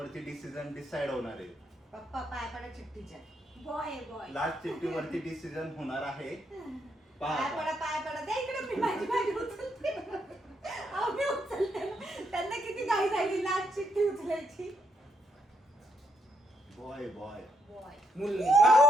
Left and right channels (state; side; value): normal; both; correlation 0.76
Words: डिसिजन डिसाइड होणार आहे. पप्पा पाय पडा चिठ्ठीच्या. Boy boy. लास्ट चिठ्ठीवरती डिसिजन होणार आहे. पाय पडा पाय पडा. द्या इकडे मी माझी उचलते. अहो, मी उचलते ना. त्यांना किती घाई झाली लास्ट चिठ्ठी उचलायची. Boy boy. बॉय. मुलगा.